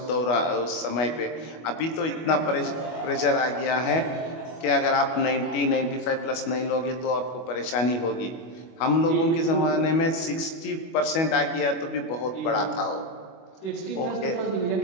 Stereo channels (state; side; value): late; right; 25 ms